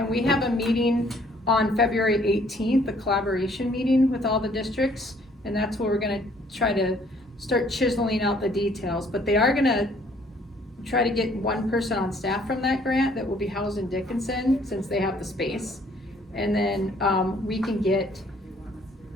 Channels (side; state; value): both; normal; correlation 0.61